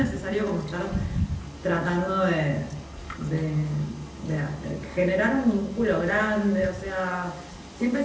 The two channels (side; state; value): both; identical; correlation 1.00